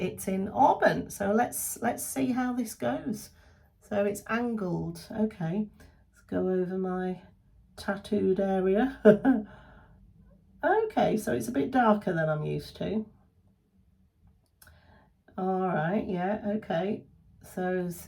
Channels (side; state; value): both; identical; correlation 1.00